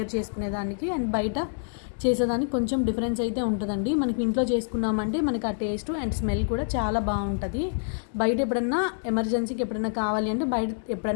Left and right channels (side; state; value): right; silent; digital silence